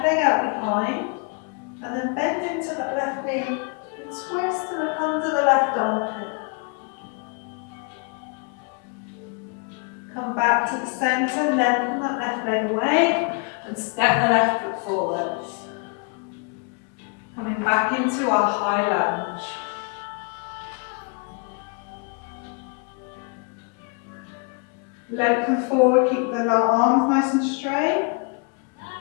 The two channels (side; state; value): right; quieter; 34.8 dB